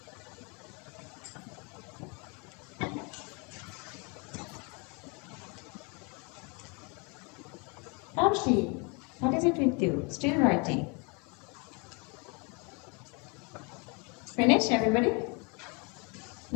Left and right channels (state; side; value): quieter; right; 32.2 dB